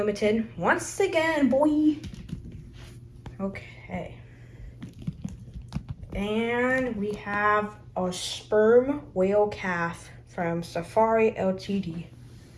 Once again, boy. Okay. And we have a sperm whale calf from Safari Ltd.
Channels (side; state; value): both; identical; correlation 1.00